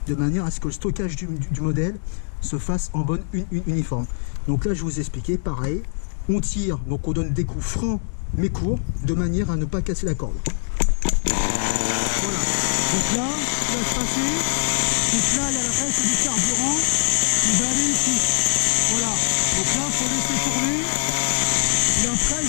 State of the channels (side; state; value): right; silent; 64 dB below the other